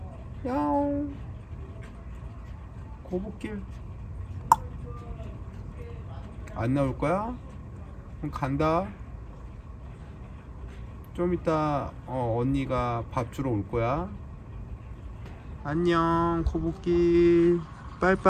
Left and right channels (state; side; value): identical; both; correlation 1.00